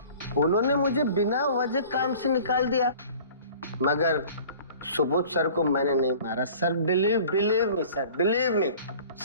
उन्होंने मुझे बिना वजह काम से निकाल दिया, मगर सुबोध सर को मैंने नहीं मारा sir. Believe me sir, believe me,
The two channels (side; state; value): both; inverted; correlation -0.46